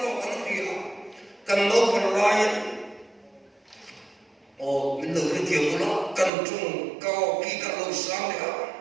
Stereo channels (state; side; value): drops out; left; at 6.3 s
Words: con cái gì cần đâu cần lại mình được cái điều của nó cần chung cao kỳ cả lâu sáng đấy